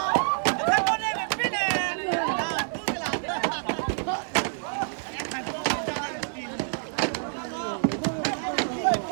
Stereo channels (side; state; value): left; silent; digital silence